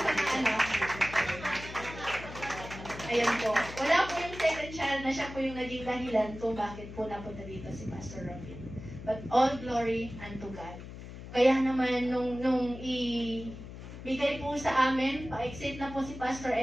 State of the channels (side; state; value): left; noise; hum, 12 dB below the sound